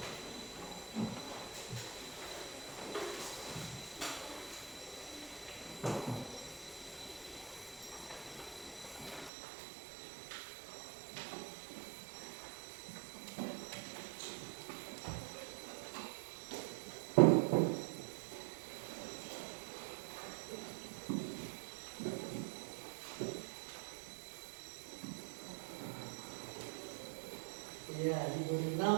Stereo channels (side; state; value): left; drops out; at 9.3 s